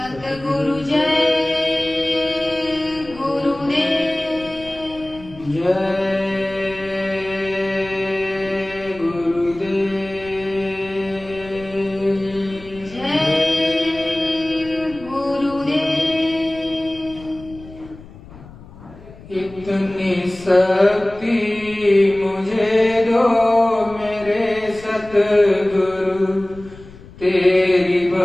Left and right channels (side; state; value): left; noise; rumble, 19 dB below the sound